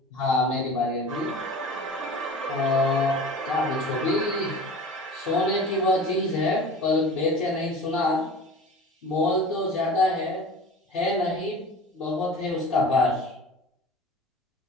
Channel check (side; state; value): both; normal; correlation 0.38